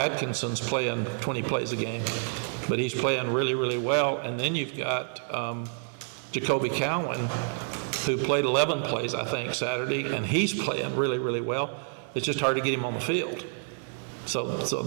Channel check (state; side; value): silent; left; 59 dB below the other